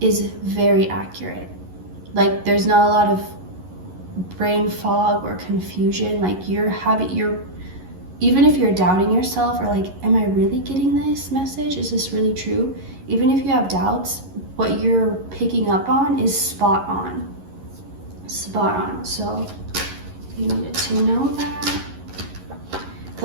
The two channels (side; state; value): left; late; 11 ms